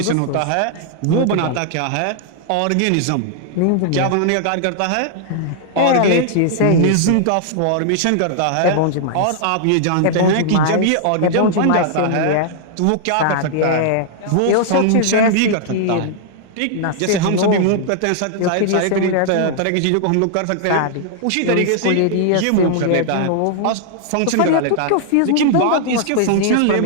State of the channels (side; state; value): both; different; correlation -0.01